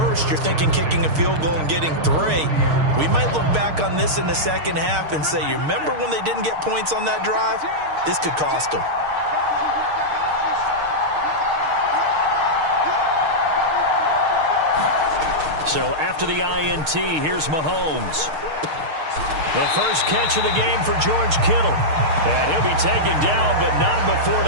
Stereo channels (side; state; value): left; late; 6.5 ms